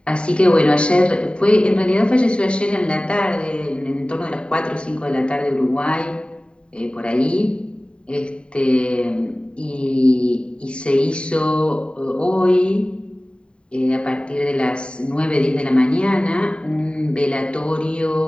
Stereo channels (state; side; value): late; right; 0.053 ms